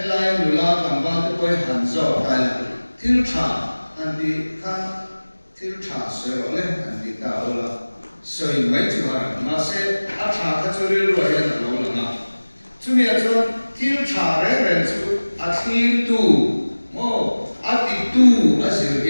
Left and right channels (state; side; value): inverted; both; correlation -1.00